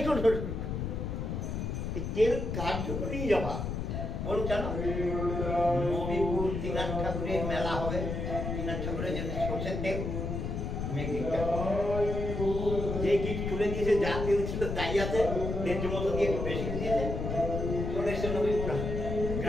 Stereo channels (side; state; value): left; noise; rumble, 3 dB below the sound